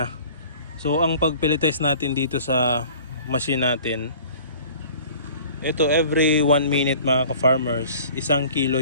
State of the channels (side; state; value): both; inverted; correlation -0.47